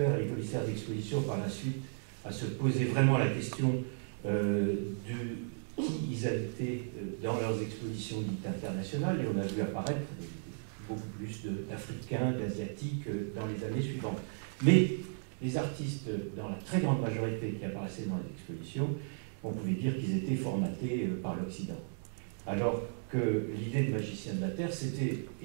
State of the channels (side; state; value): left; silent; digital silence